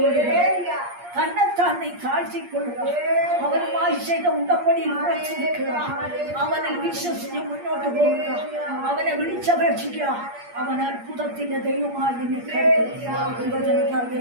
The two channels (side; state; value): left; late; 8.5 ms